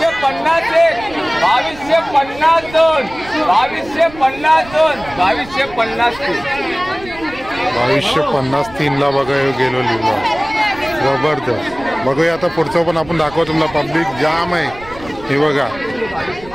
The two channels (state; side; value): noise; right; rumble, 18 dB below the sound